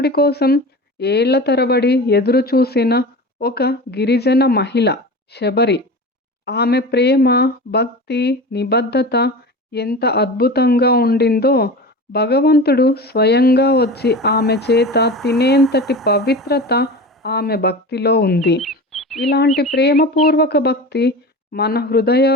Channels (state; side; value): normal; both; correlation 0.31